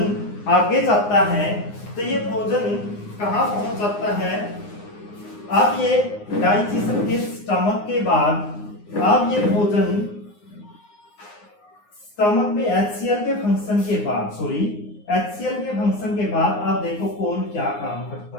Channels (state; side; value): late; right; 9.7 ms